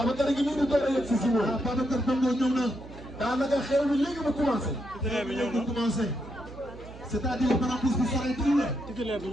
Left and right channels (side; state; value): right; noise; hum, 16 dB below the sound